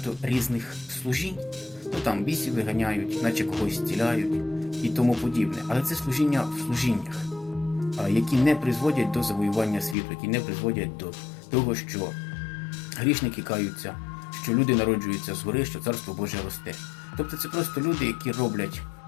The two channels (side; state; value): right; drops out; at 10.0 s